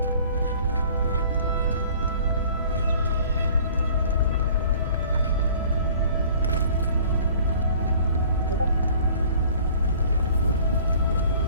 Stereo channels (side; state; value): both; inverted; correlation -0.51